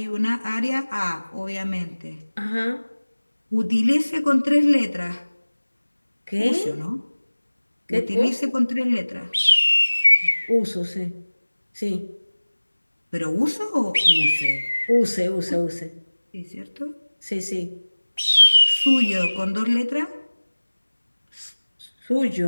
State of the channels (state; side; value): inverted; both; correlation -1.00